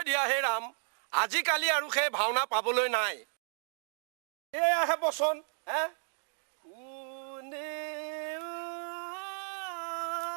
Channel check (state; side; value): silent; left; 56 dB below the other